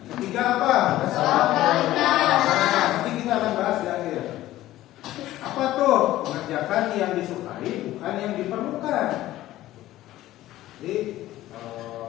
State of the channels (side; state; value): right; quieter; 15.0 dB